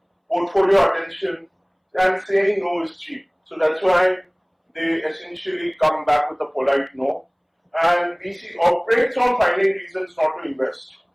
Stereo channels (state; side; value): identical; both; correlation 1.00